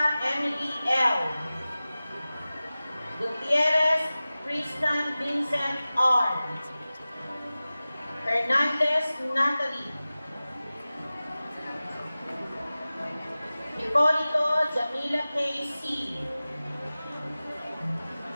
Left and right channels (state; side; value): inverted; both; correlation -0.97